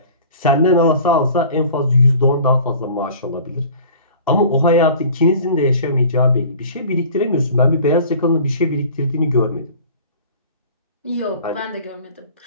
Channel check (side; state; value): both; inverted; correlation -0.45